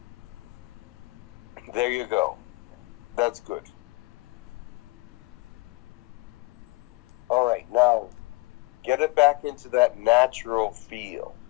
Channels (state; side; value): quieter; right; 23.4 dB